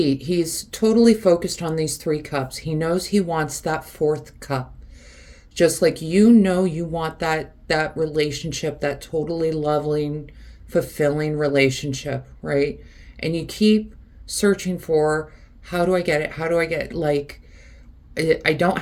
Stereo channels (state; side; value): identical; both; correlation 1.00